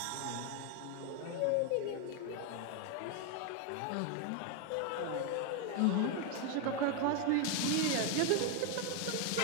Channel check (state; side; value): different; both; correlation 0.01